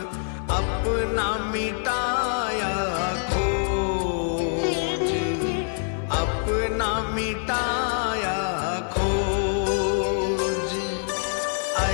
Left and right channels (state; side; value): silent; right; digital silence